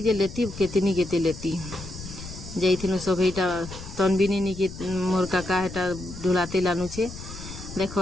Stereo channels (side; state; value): left; noise; rumble, 12 dB below the sound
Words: जे लेती केतनी केते लेती जाइथिनु सब। एटा तनबिनी नी के मोर काका हेटा ढुलाते लानु छे।